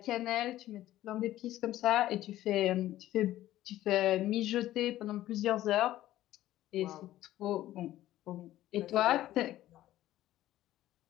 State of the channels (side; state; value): right; quieter; 14.3 dB